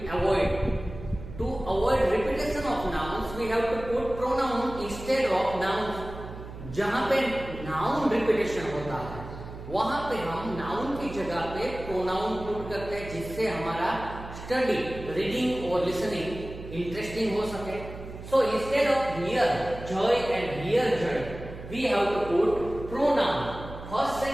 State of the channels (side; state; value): right; noise; hum, 12 dB below the sound